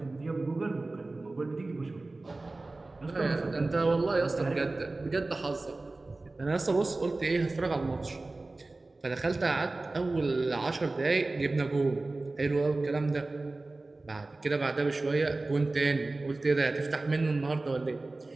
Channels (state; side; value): quieter; left; 3.2 dB